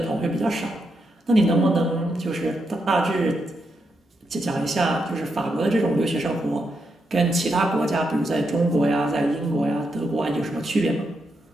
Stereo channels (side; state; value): both; normal; correlation 0.83